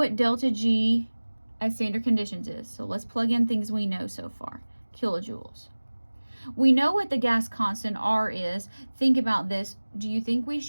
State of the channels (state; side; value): inverted; both; correlation -1.00